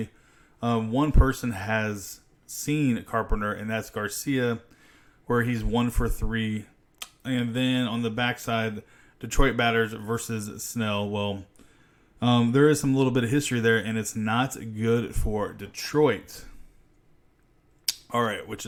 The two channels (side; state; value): both; identical; correlation 1.00